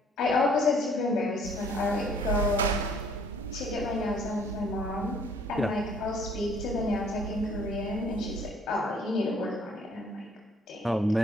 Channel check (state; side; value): normal; both; correlation 0.59